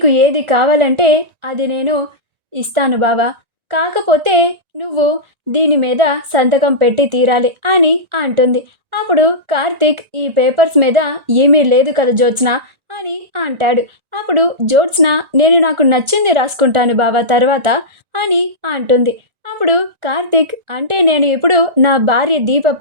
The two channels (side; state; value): left; late; 1.9 ms